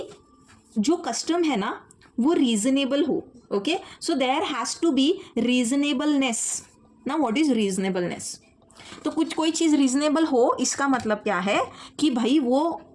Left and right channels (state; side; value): identical; both; correlation 1.00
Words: जो कस्टम है ना वो रीजनेबल हो. Okay, so there has to be reasonableness. ना व्हाट इज रीजनेबलनेस? तो कुछ कोई चीज़ रीजनेबल हो, इसका मतलब क्या है कि भाई वो